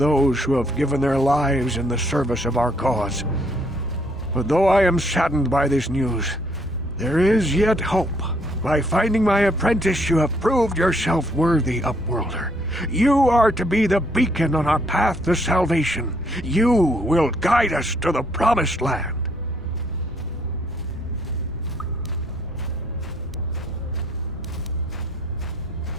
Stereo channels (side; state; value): both; normal; correlation 0.68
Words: who have given their lives in the service of our cause. But though I am saddened by this news, there is yet hope. By finding my apprentice, you have proved yourself worthy, Upworlder. You are to be the beacon on our path to salvation. You will guide us to the promised land.